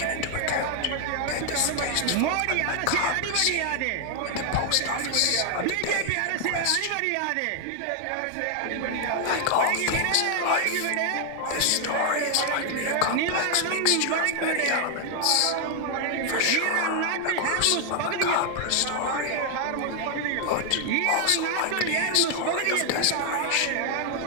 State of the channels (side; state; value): both; different; correlation 0.00